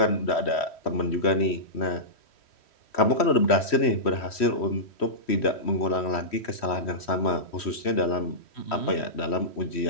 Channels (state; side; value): late; right; 3.1 ms